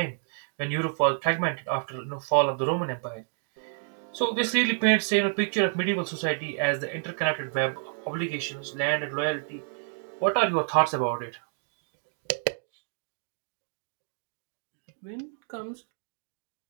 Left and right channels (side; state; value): left; silent; 59 dB below the other